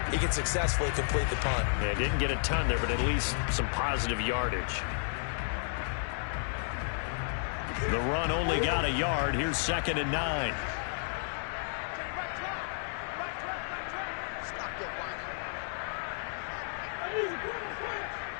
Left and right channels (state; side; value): silent; right; digital silence